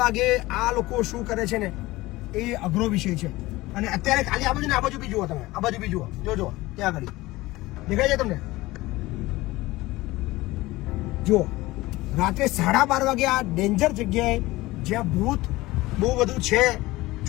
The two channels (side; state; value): right; quieter; 19.3 dB